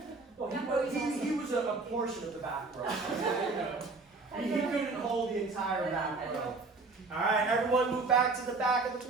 Well, he was a portion of the back row. He couldn't hold the entire back row. All right, everyone move back to the back of the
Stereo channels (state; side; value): quieter; left; 3.8 dB